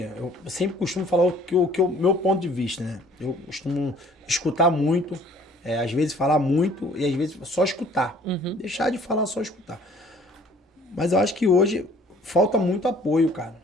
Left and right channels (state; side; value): normal; both; correlation 0.55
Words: eu sempre costumo falar o meu ponto de vista, né? Eu costumo escutar muito, às vezes falar muito e às vezes só escutar. Deixar de falar, só escutar. Mas eu acho que hoje falta muito apoio,